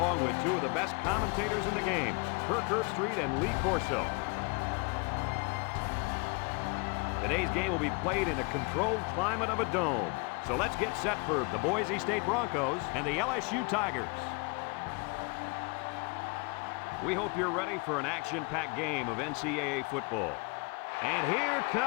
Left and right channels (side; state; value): right; quieter; 30.9 dB